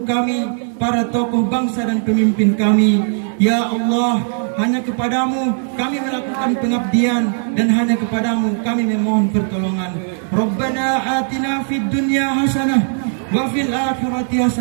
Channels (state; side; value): silent; left; digital silence